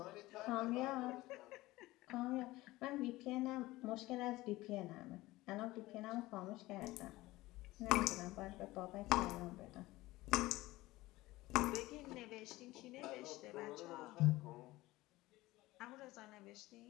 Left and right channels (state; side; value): quieter; right; 18.6 dB